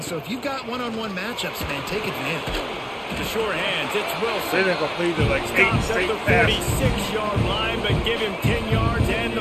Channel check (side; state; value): both; identical; correlation 1.00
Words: so if you've got one-on-one matchups, man, take advantage. The short hands, it's They Wilson. didn't complete it like 8 Stops at straight the passes. 46-yard line, but give him 10 yards and the